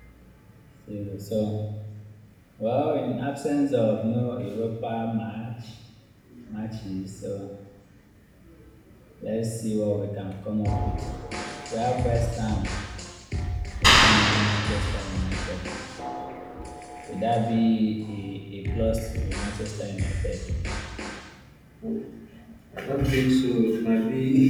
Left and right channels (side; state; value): both; identical; correlation 1.00